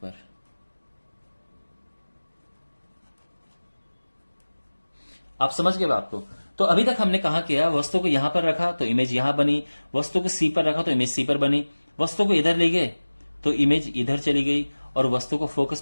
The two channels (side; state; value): both; inverted; correlation -1.00